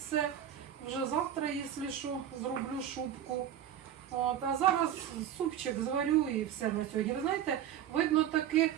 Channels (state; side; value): quieter; left; 10.3 dB